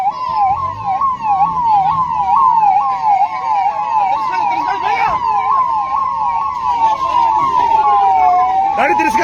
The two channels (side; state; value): both; identical; correlation 1.00